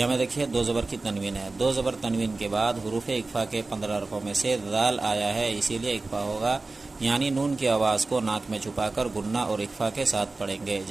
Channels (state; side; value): quieter; left; 3.5 dB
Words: میں دیکھیے دو زبر کی تنوین ہے، دو زبر تنوین کے بعد حروف اخفا کے 15 حرفوں میں سے ذال آیا ہے، اسی لیے اخفا ہوگا، یعنی نون کی آواز کو ناک میں چھپا کر گننا اور اخفا کے ساتھ پڑھیں گے،